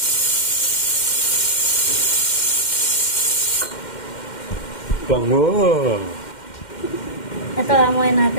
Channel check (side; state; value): right; late; 2.1 ms